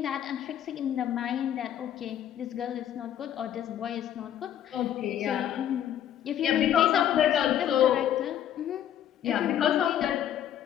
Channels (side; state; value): right; quieter; 10.5 dB